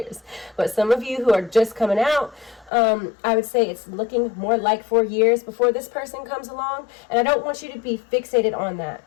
But some of you who are just coming out, I would say it's looking more like 4 years before this person comes along. And I don't want you to be fixated on that.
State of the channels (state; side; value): drops out; right; at 2.7 s